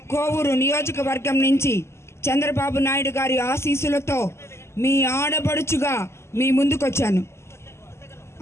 కోవూరు నియోజకవర్గం నుంచి చంద్రబాబు నాయుడు గారి ఆశీస్సులతో మీ ఆడబడుచుగా మీ ముందుకొచ్చాను.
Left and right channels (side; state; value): right; late; 0.13 ms